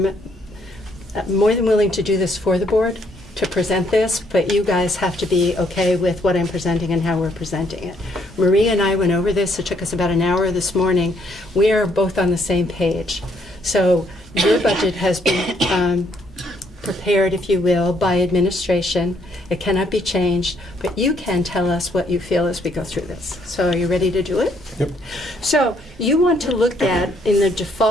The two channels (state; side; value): normal; both; correlation 0.69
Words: more than willing to do this for the board, to present this, but you guys have to be okay with what I'm presenting and how we're presenting it. Marie and I went over this. It took us about an hour this morning. We are both on the same page. So your budget has been prepared, if you will, by administration. It cannot be changed, but you can tell us what you feel as we go through this. So are you ready to do it? Yep. So you want to look at, in the